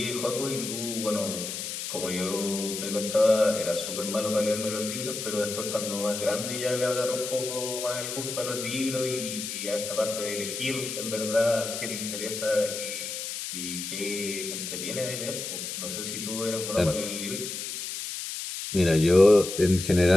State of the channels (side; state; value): left; noise; hiss, 6 dB below the sound